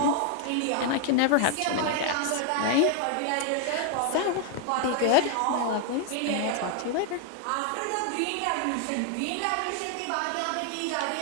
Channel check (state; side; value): different; both; correlation 0.00